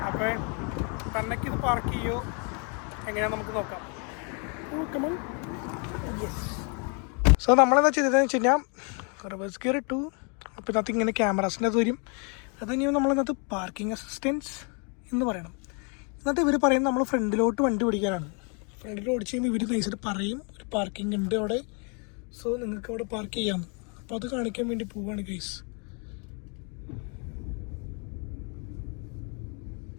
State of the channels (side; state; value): right; quieter; 36.9 dB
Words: അപ്പോൾ തന്നേക്ക് ഇത് പാർക്ക് ചെയ്യുമോ എങ്ങനെയാണെന്ന് നമുക്ക് നോക്കാം. യെസ്. സോ നമ്മളെന്താ ചെയ്തതെന്ന് വെച്ച് കഴിഞ്ഞാൽ റിവേഴ്സ് ഗിയർ ഇട്ടു. അപ്പോൾ ഇതിനകത്ത് ഇങ്ങനെ ക്യാമറാസിൻ്റെ അത് വരും. അത് കഴിഞ്ഞാൽ നമ്മളിന്നകത്ത് പാർക്കിംഗ് അസിസ്റ്റൻസ് എന്ന് പറയണം. എന്നിട്ട് ഇവർ പറയുന്നത് നമ്മൾ ഫ്രണ്ടിലോട്ട് വണ്ടി ഓടിക്കാനാണ്. ഫ്രണ്ടിൽ ഓടിച്ച് കഴിയുമ്പോൾ ഇവർ നൈസായിട്ട് പറയും ഒരു പാർക്കിംഗ് ഉണ്ട് അവിടെ, സോ നിങ്ങൾക്ക് അവിടെ പാർക്ക് ചെയ്യാം. അപ്പോൾ അത് കാണിക്കാൻ വേണ്ടി പോവാണ് ഗൈസ്.